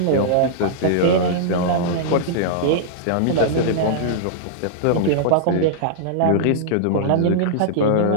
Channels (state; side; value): different; both; correlation -0.02